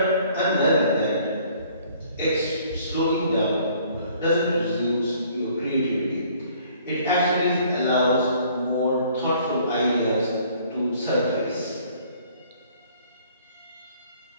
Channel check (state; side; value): inverted; both; correlation -0.58